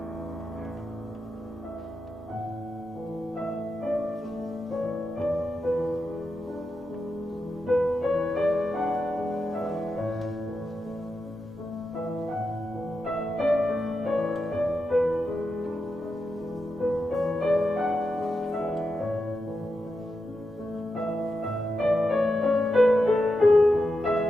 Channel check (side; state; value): both; normal; correlation 0.88